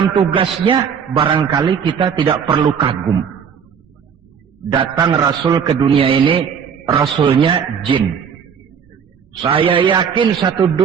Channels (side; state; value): left; quieter; 7.2 dB